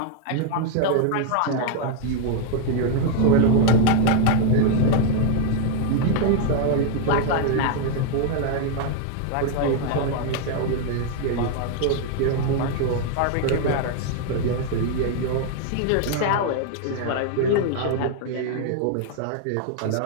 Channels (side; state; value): both; different; correlation 0.00